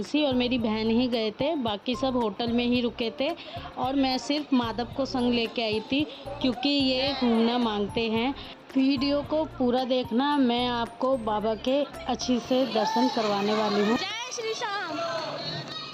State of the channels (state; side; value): identical; both; correlation 1.00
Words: और मेरी बहन ही गए थे, बाकी सब होटल में ही रुके थे और मैं सिर्फ माधव को संग लेके आई थी क्योंकि ये घूमना मांगते हैं। वीडियो को पूरा देखना, मैं आपको बाबा के अच्छी से दर्शन करवाने वाली हूँ। जय श्री श्याम।